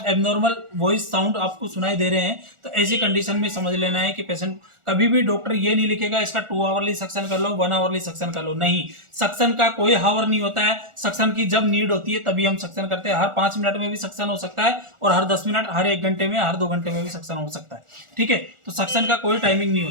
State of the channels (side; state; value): left; late; 1.4 ms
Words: एबनॉर्मल वॉइस साउंड आपको सुनाई दे रहे हैं, तो ऐसी कंडीशन में समझ लेना है कि पेशेंट, कभी भी डॉक्टर ये नहीं लिखेगा इसका 2 आवरली सक्शन कर लो, 1 आवरली सक्शन कर लो, नहीं, सक्शन का कोई हावर नहीं होता है। सक्शन की जब नीड होती है तभी हम सक्शन करते हैं। हर 5 मिनट में भी सक्शन हो सकता है, और हर 10 मिनट, हर 1 घंटे में, हर 2 घंटे में भी सक्शन हो सकता है। ठीक है, तो सक्शन का कोई टाइमिंग नहीं